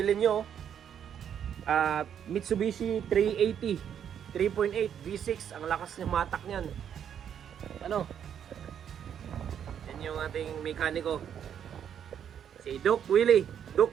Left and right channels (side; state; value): left; quieter; 8.8 dB